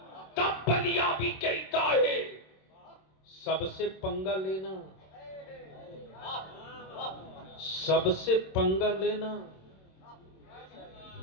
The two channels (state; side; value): late; right; 26 ms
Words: तब बलियाबी कहता है सबसे पंगा लेना, सबसे पंगा लेना,